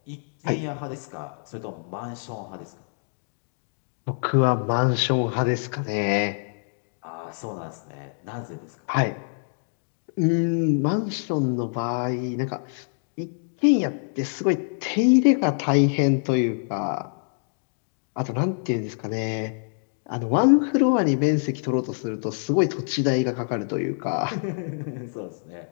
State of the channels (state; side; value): silent; right; digital silence